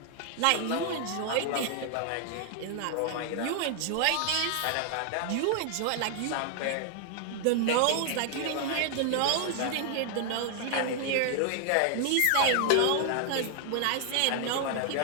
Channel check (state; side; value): different; both; correlation 0.00